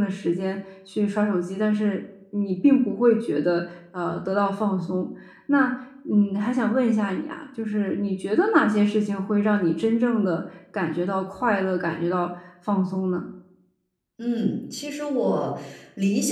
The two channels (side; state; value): both; identical; correlation 1.00